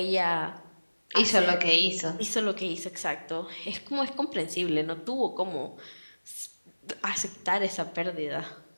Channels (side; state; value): both; inverted; correlation -1.00